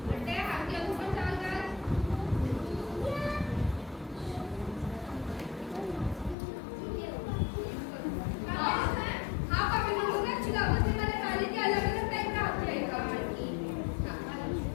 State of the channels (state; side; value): drops out; right; at 6.4 s